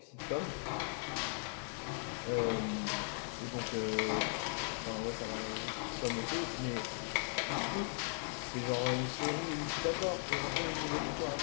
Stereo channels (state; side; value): silent; right; 52 dB below the other